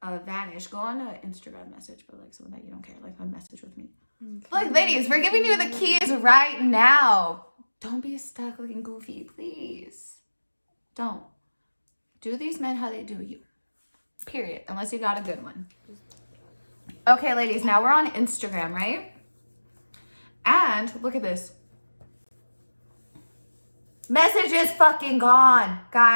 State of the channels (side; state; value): both; inverted; correlation -1.00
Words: vanish. Go on an Instagram message, but like someone that you don't care. Like a message with me. Okay. Look, ladies, we're giving you the keys right now. Don't be stuck looking goofy, please. Don't. Do these men how they do you. Period. Unless you got a good one. Okay, ladies, now we're on Instagram, right? And look at this. Message is fucking gone.